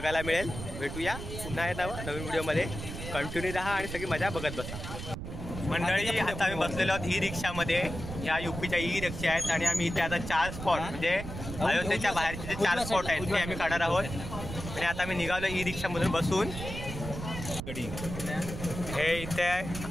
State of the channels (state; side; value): noise; right; rumble, 8 dB below the sound